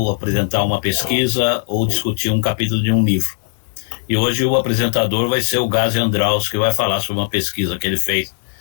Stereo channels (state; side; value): silent; right; digital silence